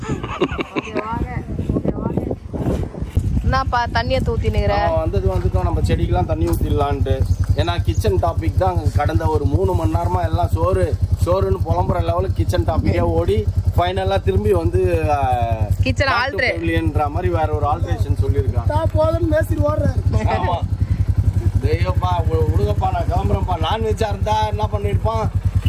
என்னப்பா தண்ணியை ஊத்தினுங்கிற? வந்துட்டோம் நம்ம செடிக்கெல்லாம் தண்ணி ஊத்திடலான்ட்டு. ஏன்னா கிச்சன் டாபிக் தான் கடந்த ஒரு 3 மணி நேரமா எல்லாம் சோறுன்னு புலம்புற லெவலுக்கு கிச்சன் டாபிக்கே ஓடி ஃபைனலா திரும்பி வந்து கிச்சன் ஆல்ட்ரேஷன்ன்ற மாதிரி வேற ஒரு ஆல்ட்ரேஷன் சொல்லியிருக்கான். போதும் மேஸ்திரி ஓடுறாரு. ஆமா தெய்வப்பா விடுங்கப்பா, நான் கிளம்புறேன்ப்பா. நான்வெஜ்ஜா இருந்தா என்ன பண்ணிருப்பான்,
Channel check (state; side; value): identical; both; correlation 1.00